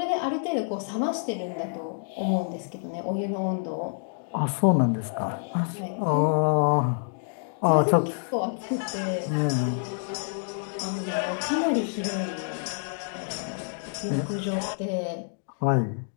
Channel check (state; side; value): silent; right; digital silence